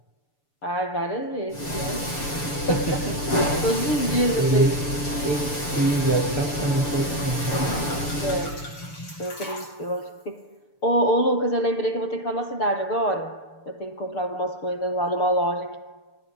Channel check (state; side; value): late; right; 6.8 ms